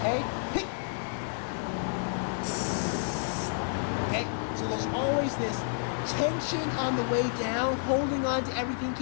Okay, so there's always this tension on the way down, holding on to everything,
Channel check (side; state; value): right; silent; digital silence